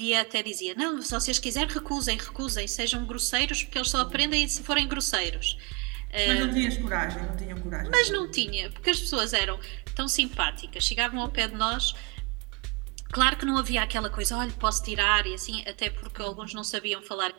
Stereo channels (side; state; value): left; quieter; 30.2 dB